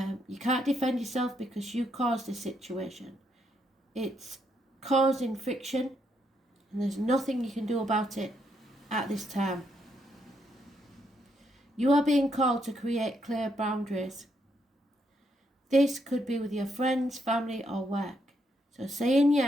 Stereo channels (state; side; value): normal; both; correlation 0.77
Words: You can't defend yourself because you caused the situation. It's causing friction, and there's nothing you can do about it at this time. You are being called to create clear boundaries. This could be with your friends, family, or work. So saying